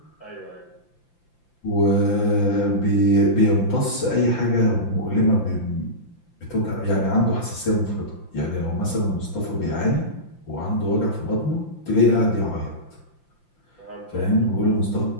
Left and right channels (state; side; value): late; right; 5.8 ms